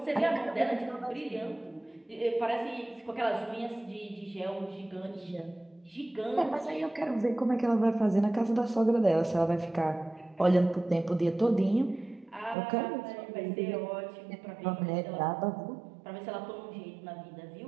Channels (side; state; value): left; drops out; at 12.6 s